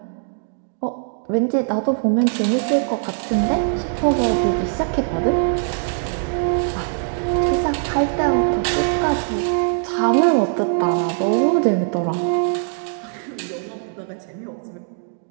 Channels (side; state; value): left; silent; digital silence